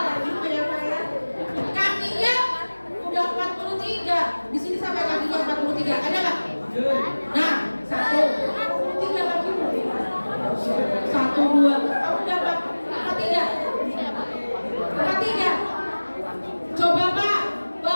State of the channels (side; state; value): both; inverted; correlation -1.00